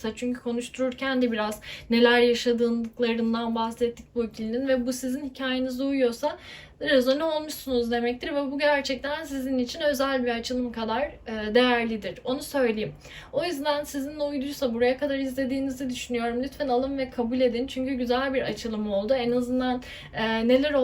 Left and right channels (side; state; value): both; identical; correlation 1.00